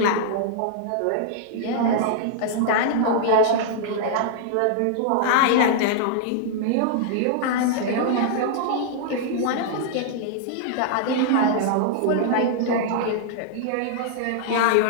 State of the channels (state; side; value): different; both; correlation -0.01